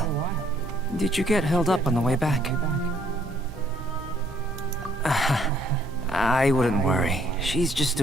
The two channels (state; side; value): normal; both; correlation 0.65